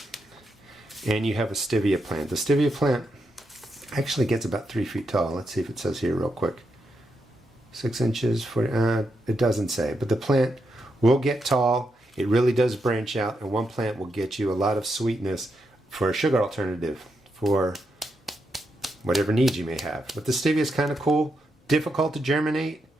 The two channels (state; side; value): normal; both; correlation 0.83